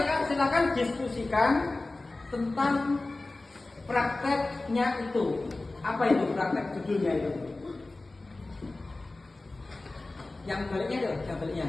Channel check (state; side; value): quieter; right; 3.1 dB